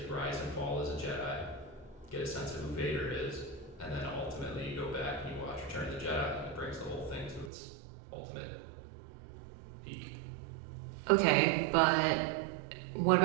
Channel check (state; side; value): drops out; left; at 7.5 s